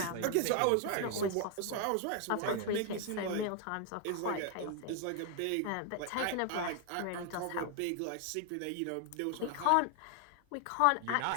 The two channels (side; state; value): both; different; correlation 0.00